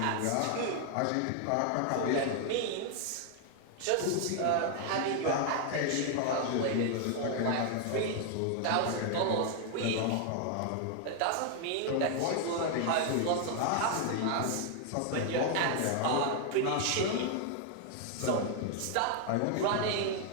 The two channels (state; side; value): different; both; correlation 0.00